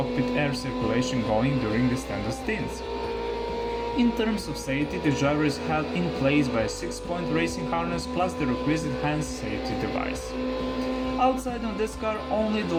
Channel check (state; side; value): identical; both; correlation 1.00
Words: air circulation going during the standard stints. In terms of safety, the driver is held in place by a 6-point racing harness plus the requisite hand safety device. Outside on this car only the